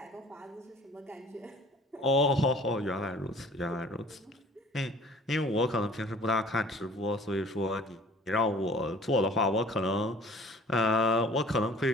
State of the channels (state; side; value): normal; both; correlation 0.49